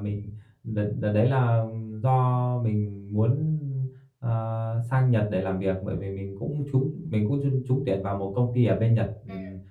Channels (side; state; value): both; identical; correlation 1.00